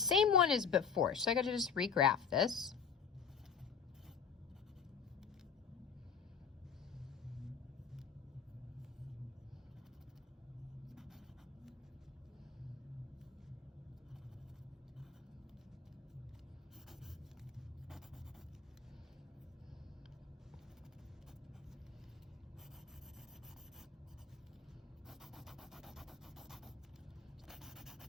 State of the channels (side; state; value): right; quieter; 6.3 dB